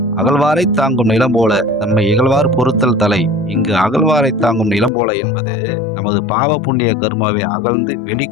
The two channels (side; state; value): right; drops out; at 4.9 s